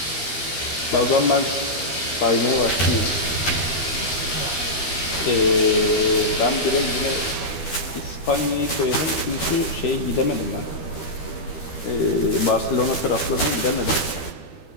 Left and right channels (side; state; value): right; late; 12 ms